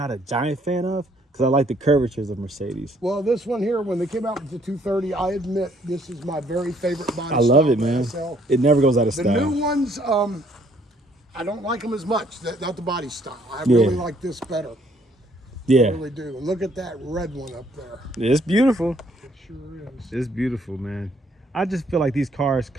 a giant fan of because I like the curvatures of Mercedes. Well, this one here, when they came out with the 230, I admit this is my very favorite body. I love it, man. It never goes out of style. The new ones, I don't like them as much. Not the body style. I really like this better. Yeah. I really do. Look at that red one up there. It's beautiful. It sure is. It's beautiful, man. I just feel like these cars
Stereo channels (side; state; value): both; normal; correlation 0.65